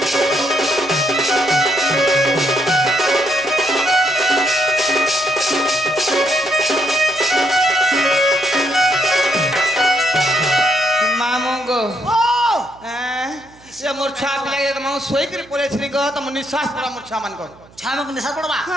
মামু গো ও সে মোর ছুয়া পিলাকে মামু শোইকি পড়েছিলি গো তম নিঃশ্বাস পড়া মোর ছুয়া মান গো ছামক নিশা পড়বা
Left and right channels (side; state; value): right; noise; hum, 26 dB below the sound